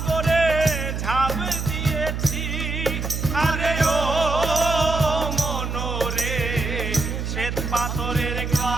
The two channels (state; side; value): noise; right; hum, 3 dB below the sound